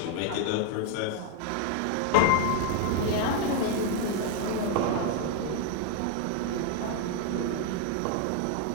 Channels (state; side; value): different; both; correlation 0.00